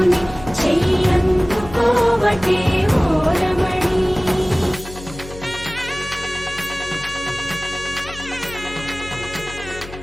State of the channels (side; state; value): left; noise; hum, 15 dB below the sound